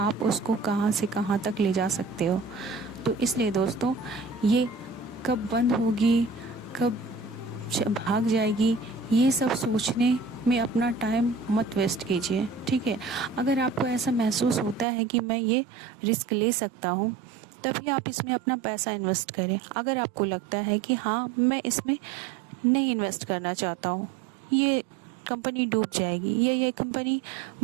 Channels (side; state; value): left; drops out; at 14.9 s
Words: उसको कहाँ से कहाँ तक ले जा सकते हो। तो इसलिए दोस्तों, ये कब बंद होगी, कब भाग जाएगी, ये सब सोचने में अपना टाइम मत वेस्ट कीजिए, ठीक है। अगर आपको ऐसा महसूस होता है कि मैं ये रिस्क ले सकता हूँ, तभी आप इसमें अपना पैसा इन्वेस्ट करें। अगर आपको लगता है कि हाँ, मैं इसमें नहीं इन्वेस्ट करना चाहता हूँ, ये कंपनी डूब जाएगी या ये कंपनी